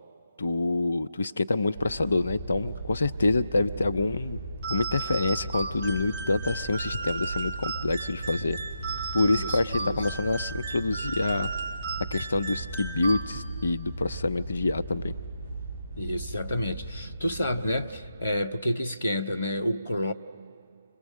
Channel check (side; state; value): both; inverted; correlation -0.85